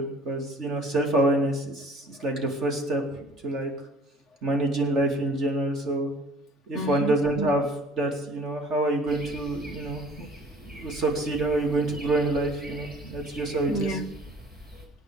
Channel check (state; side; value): normal; both; correlation 0.51